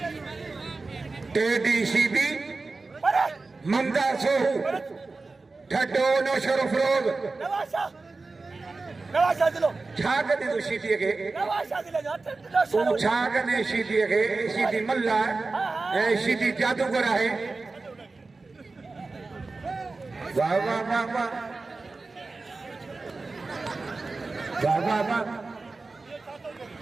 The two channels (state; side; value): quieter; left; 3.7 dB